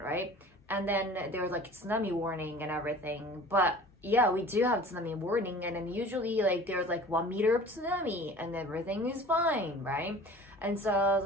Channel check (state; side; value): normal; both; correlation 0.44